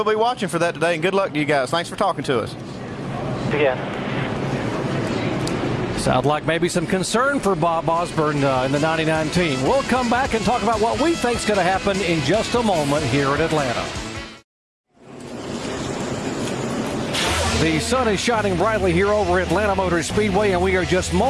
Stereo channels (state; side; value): identical; both; correlation 1.00